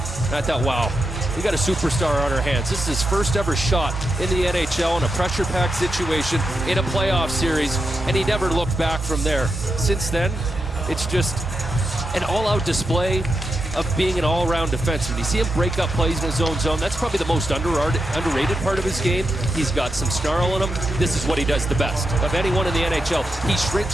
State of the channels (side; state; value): both; normal; correlation 0.86